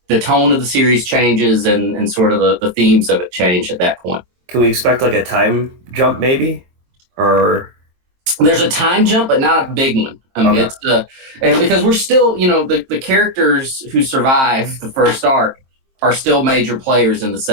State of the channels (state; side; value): late; left; 23 ms